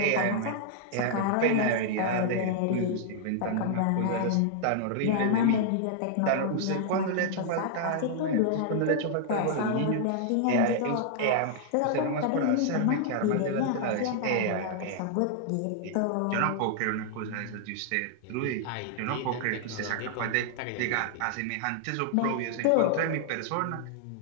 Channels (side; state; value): both; different; correlation -0.01